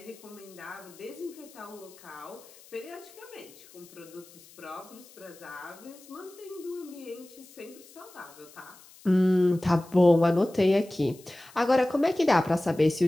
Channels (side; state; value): left; noise; hiss, 23 dB below the sound